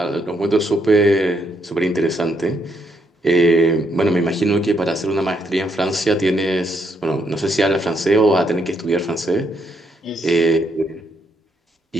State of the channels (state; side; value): normal; both; correlation 0.75